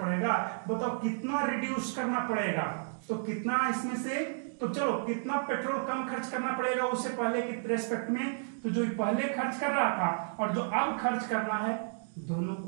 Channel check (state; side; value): silent; left; digital silence